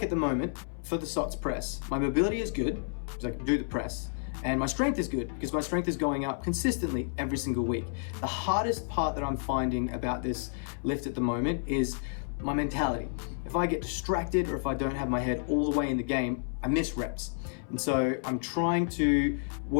at the moment for the SOTS press, my mobility is good because I can do the press, and my strength is good because my strength is going up consistently every single week. The hardest part that I'm finding about this lift at the moment is my mentality. If I get distracted or if I don't have my head all the way in the game, I miss reps. And so I'm trying to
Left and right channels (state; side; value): silent; right; 57 dB below the other